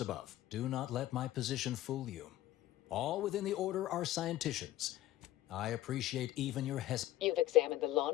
Do not let my position fool you. All within the order are scienticians. I appreciate even your You've examined the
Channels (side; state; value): right; quieter; 14.6 dB